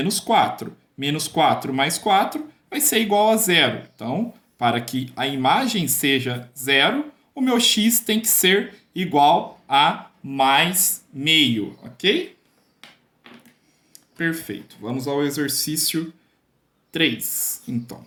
4. Menos 4 mais 4 vai ser igual a zero. Então, para que a imagem seja zero, o meu x tem que ser igual a mais meio, ok? Perfeito. Vamos ao exercício 3, então.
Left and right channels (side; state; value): both; identical; correlation 1.00